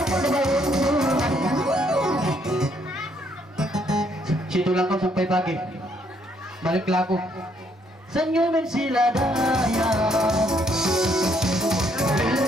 Situ lang kau sampai pagi. Balik laku. Senyumin sila daya.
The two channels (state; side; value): normal; both; correlation 0.70